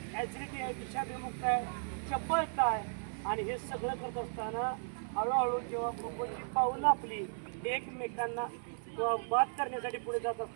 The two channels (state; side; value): silent; left; 54 dB below the other